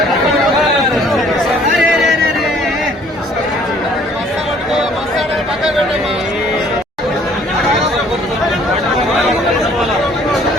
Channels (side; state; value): both; normal; correlation 0.58